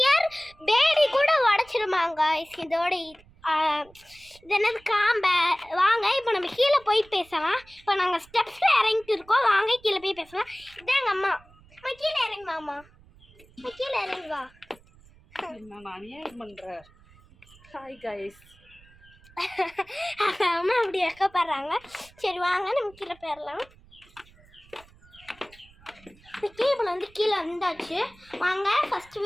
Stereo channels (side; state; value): right; noise; rumble, 26 dB below the sound